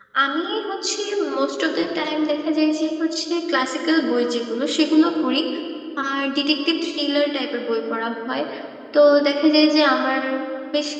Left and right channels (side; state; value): both; identical; correlation 1.00